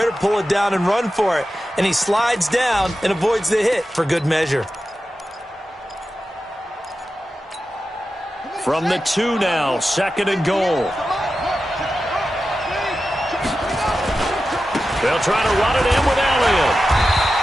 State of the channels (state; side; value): normal; both; correlation 0.92